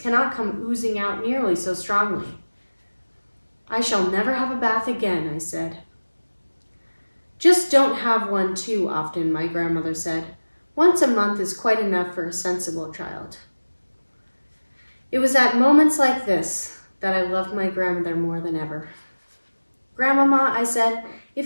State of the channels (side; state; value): both; inverted; correlation -1.00